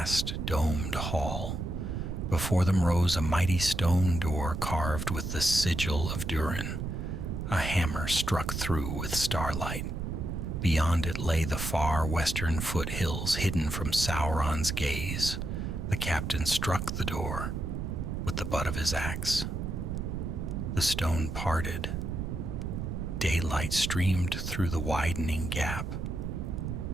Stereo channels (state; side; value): noise; right; rumble, 3 dB below the sound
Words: domed hall. Before them rose a mighty stone door carved with the sigil of Durin. A hammer struck through with starlight. Beyond it lay the far western foothills hidden from Sauron's gaze. The captain struck the door with the butt of his axe. The stone parted. Daylight streamed through the widening gap.